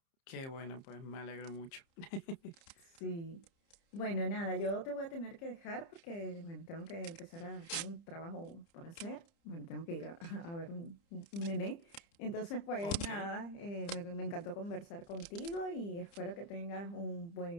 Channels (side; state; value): right; late; 30 ms